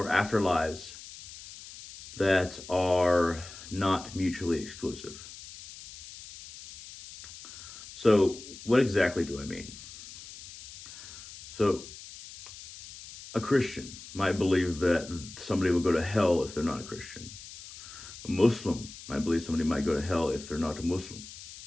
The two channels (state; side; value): noise; left; hiss, 15 dB below the sound